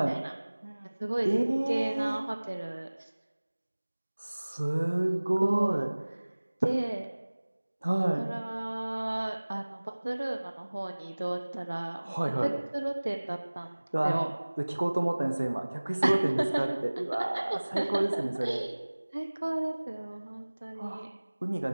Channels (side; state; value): both; inverted; correlation -1.00